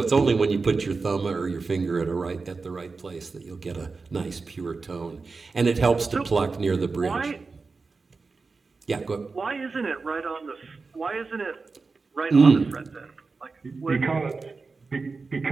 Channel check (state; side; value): quieter; left; 4.2 dB